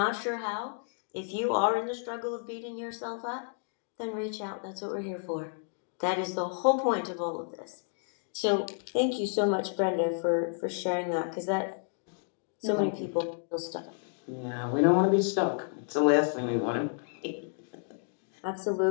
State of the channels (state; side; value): silent; right; 57 dB below the other